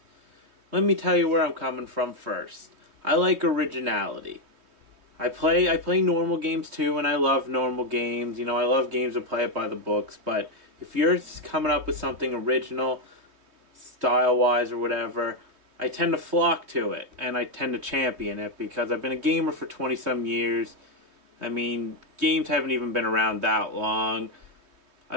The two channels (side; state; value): left; late; 3.2 ms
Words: Let me tell you where I'm coming from first. I like originality. I play normal games too, and I love normal games. You know, I love games that play it by the books, but if you're coming up with something original, style-wise or whatever, I tend to flock to it, and I tend to champion it, because I've been a gamer for 20-some years. I mean, games haven't even been around that long.